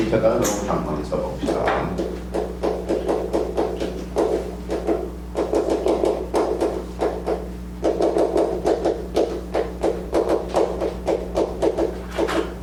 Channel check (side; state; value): both; identical; correlation 1.00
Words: 이렇게 한번 써봅시다.